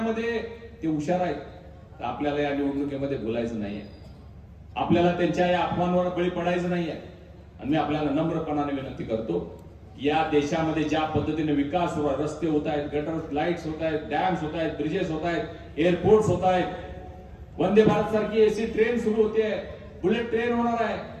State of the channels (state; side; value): identical; both; correlation 1.00